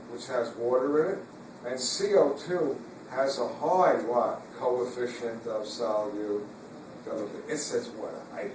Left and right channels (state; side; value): identical; both; correlation 1.00